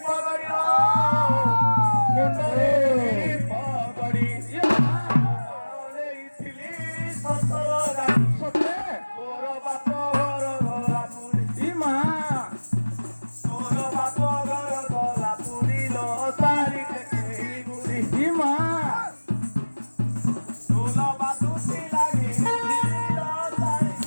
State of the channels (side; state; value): both; inverted; correlation -1.00